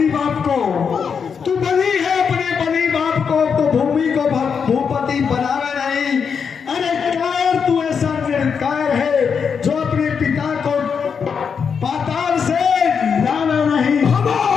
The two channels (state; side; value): quieter; right; 6.4 dB